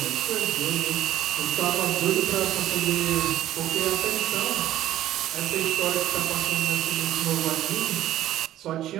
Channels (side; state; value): left; quieter; 13.3 dB